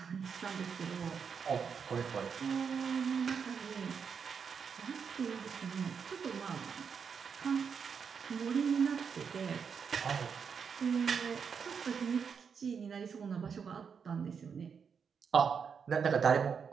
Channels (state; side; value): quieter; left; 6.4 dB